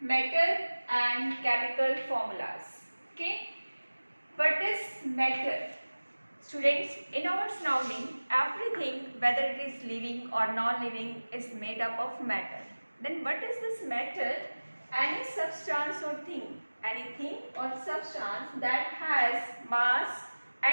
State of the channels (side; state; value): both; inverted; correlation -1.00